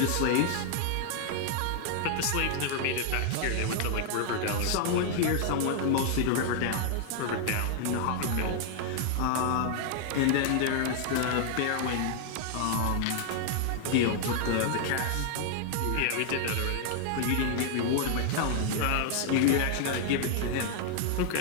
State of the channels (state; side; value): different; both; correlation 0.00